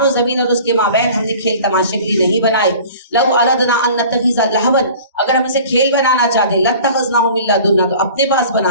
जमीन और उसके माबैन हमने खेल तमाशे के लिए नहीं बनाए। लव अरदना अन नत्तखिज़ा लहवन, अगर हम इसे खेल बनाना चाहते, लत्तखज़नाहु मिन लदुन्ना, तो अपने पास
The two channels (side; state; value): both; inverted; correlation -0.44